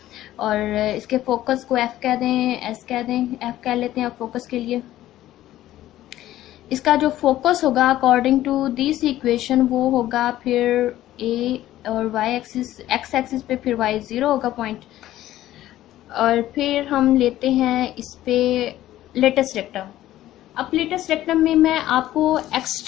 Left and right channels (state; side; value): quieter; right; 14.1 dB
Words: और इसके फोकस को एफ कह दें, एस कह दें, एफ कह लेते हैं अब फोकस के लिए। इसका जो फोकस होगा अकॉर्डिंग टू दिस इक्वेशन वो होगा फिर ए, और वाई एक्सिस एक्स एक्सिस पे फिर वाई 0 होगा पॉइंट। और फिर हम लेते हैं इस पे लेटेस्ट रेक्टम। अब लेटेस्ट रेक्टम में मैं आपको